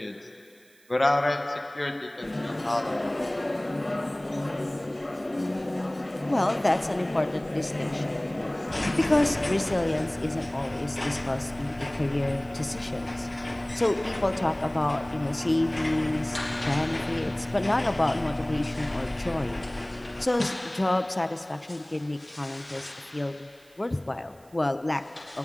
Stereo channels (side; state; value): right; noise; hiss, 29 dB below the sound